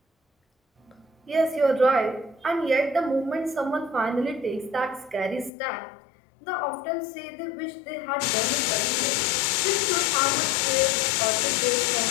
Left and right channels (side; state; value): right; drops out; at 5.5 s